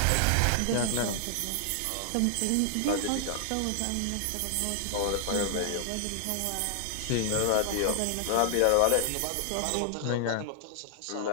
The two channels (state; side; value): different; both; correlation 0.00